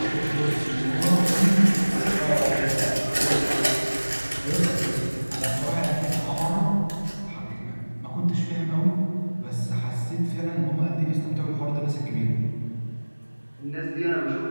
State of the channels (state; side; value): inverted; both; correlation -1.00